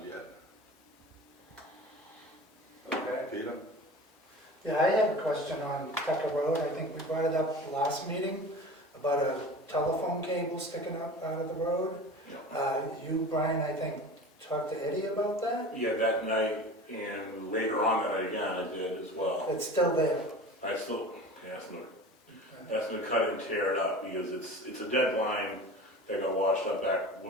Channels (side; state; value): both; normal; correlation 0.36